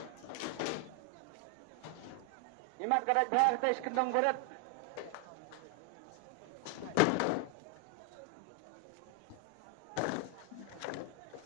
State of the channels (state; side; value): different; both; correlation 0.00